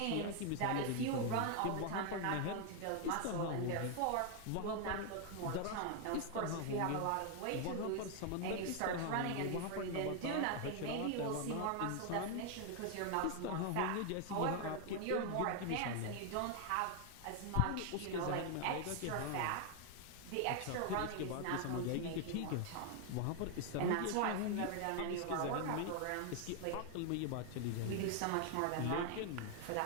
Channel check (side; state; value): both; different; correlation 0.00